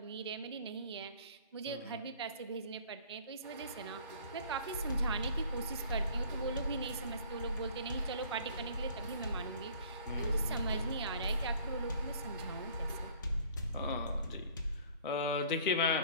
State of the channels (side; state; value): both; inverted; correlation -0.52